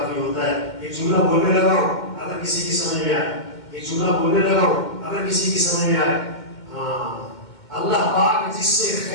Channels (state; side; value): late; right; 2.1 ms